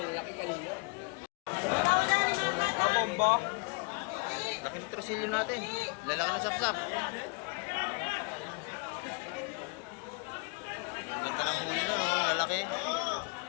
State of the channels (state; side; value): quieter; right; 32.5 dB